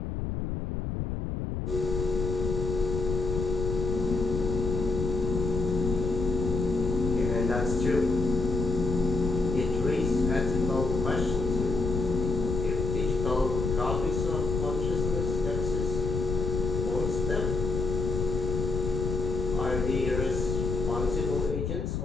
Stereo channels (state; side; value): noise; left; rumble, 2 dB below the sound